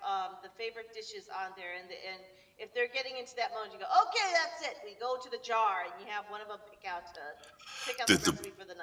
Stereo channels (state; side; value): identical; both; correlation 1.00